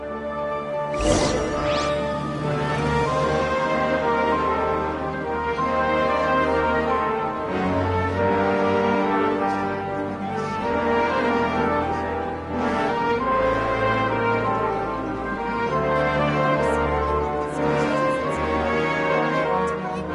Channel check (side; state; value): both; identical; correlation 1.00